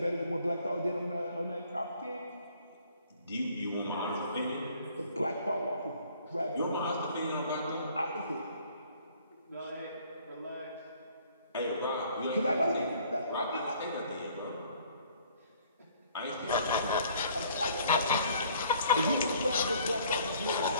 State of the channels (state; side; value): inverted; both; correlation -0.58